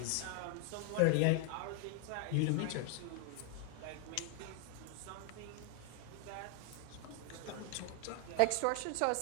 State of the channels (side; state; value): both; different; correlation 0.00